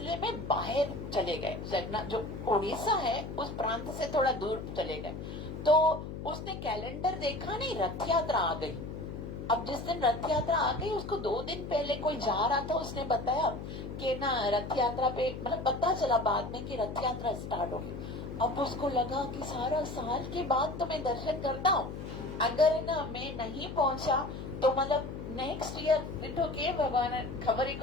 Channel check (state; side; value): noise; left; hum, 8 dB below the sound